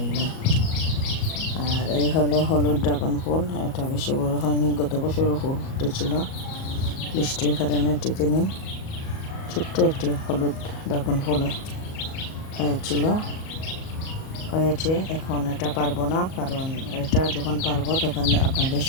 আর এই হলো হলুদ ড্রাগন ফুল। এটা বেশি বড় হয়নি, গত বছরও ফুল ফুটেছিল, বৃষ্টির কারণে টিকেনি। ছোট্ট একটি হলুদ ড্রাগন ফুল হয়েছে। এখন এটা পারবো না, কারণ এটা যখন পারবো তখন আপনাদের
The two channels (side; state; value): right; late; 38 ms